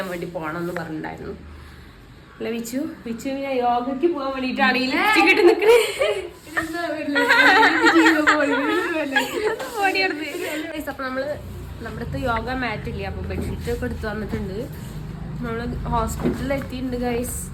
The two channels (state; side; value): identical; both; correlation 1.00